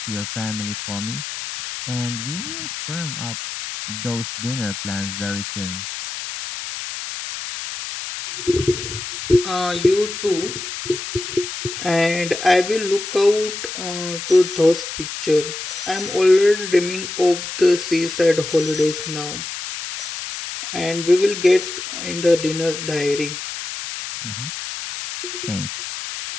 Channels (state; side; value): noise; left; hiss, 7 dB below the sound